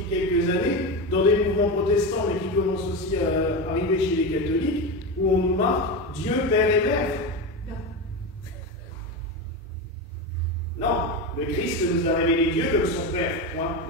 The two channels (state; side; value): normal; both; correlation 0.18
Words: quelques années, dans des mouvements protestants, mais qui commencent aussi à arriver chez les catholiques, où on nous marque Dieu, Père et Mère. Non, le Christ nous a révélé Dieu comme son Père, point